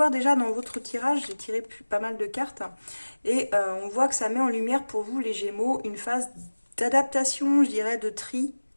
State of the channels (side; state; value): both; inverted; correlation -1.00